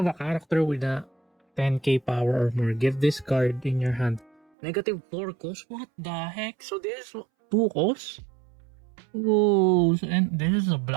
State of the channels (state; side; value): drops out; left; at 4.4 s